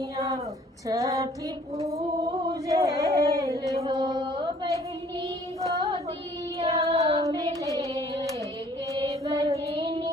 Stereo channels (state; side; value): normal; both; correlation 0.57